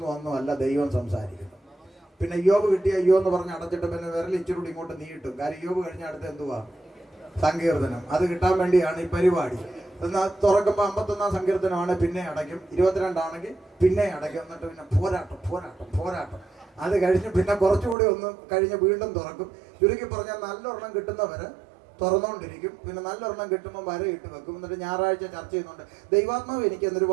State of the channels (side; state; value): left; drops out; at 17.9 s